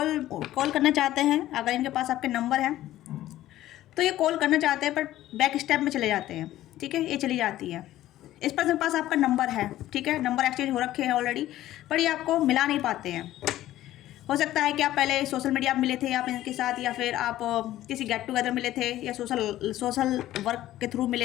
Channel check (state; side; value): quieter; right; 14.3 dB